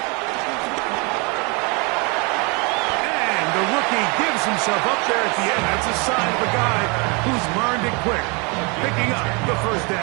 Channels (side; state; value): left; quieter; 30.7 dB